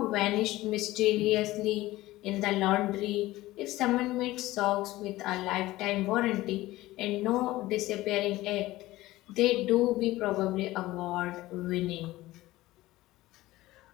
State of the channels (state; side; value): quieter; right; 17.5 dB